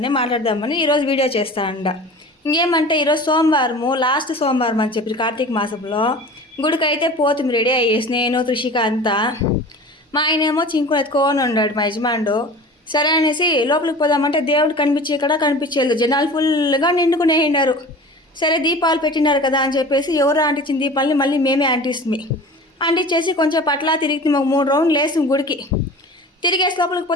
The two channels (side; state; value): both; normal; correlation 0.39